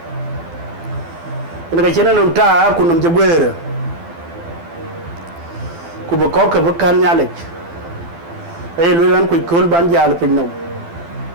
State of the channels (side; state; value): left; late; 12 ms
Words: ina chena no ta ku nom jagwere ku ba ko ka kan nyale ay lu ran ku kol ban jall pin no